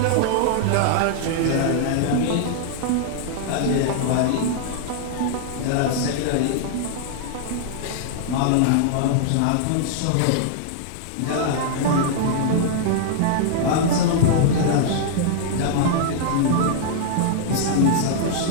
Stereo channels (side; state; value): both; different; correlation -0.01